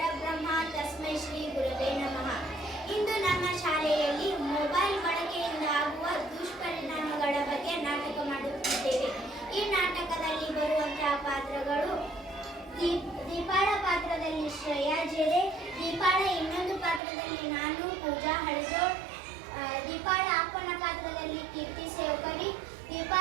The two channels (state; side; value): drops out; left; at 17.0 s